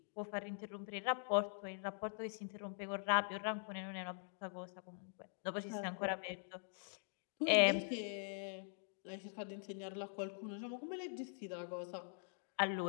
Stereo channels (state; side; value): silent; right; digital silence